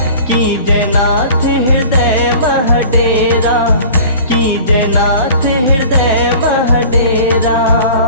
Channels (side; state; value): both; inverted; correlation -0.43